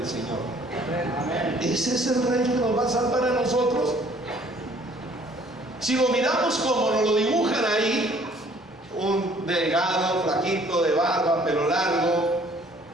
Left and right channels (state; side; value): normal; both; correlation 0.58